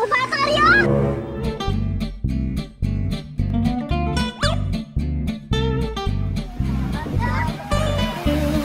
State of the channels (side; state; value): both; identical; correlation 1.00